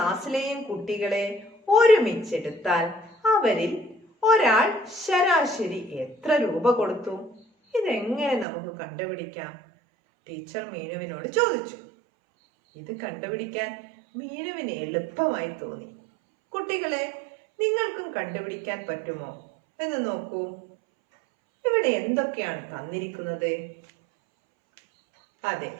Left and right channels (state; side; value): drops out; left; at 8.5 s